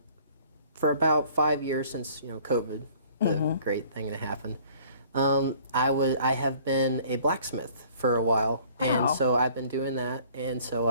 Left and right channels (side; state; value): both; inverted; correlation -0.54